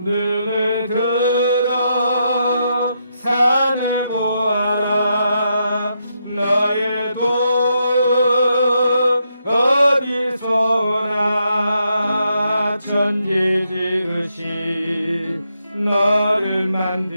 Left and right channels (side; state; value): both; inverted; correlation -0.80